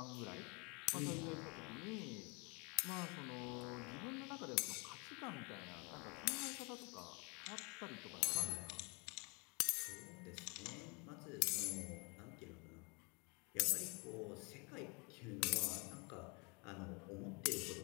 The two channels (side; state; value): right; quieter; 31.7 dB